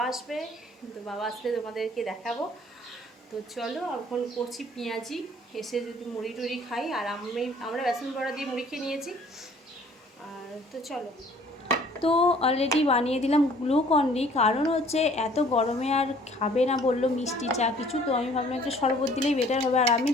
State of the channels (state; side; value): normal; both; correlation 0.55